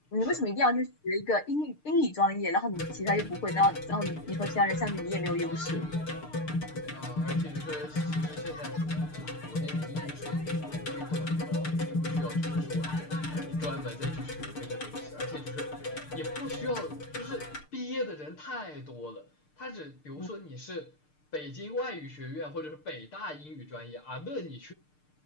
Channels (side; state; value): right; late; 6.6 ms